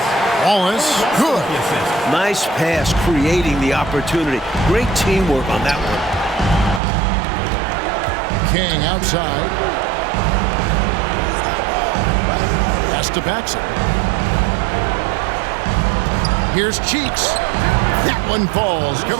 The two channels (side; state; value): left; drops out; at 6.8 s